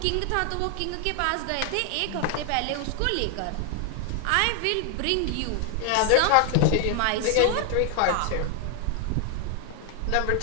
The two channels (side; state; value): both; different; correlation 0.00